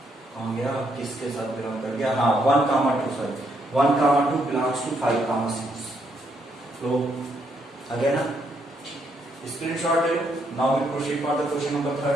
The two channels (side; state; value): both; normal; correlation 0.75